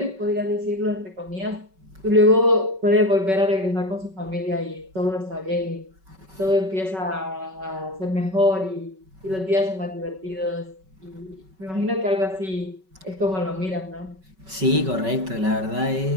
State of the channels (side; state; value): left; late; 5.3 ms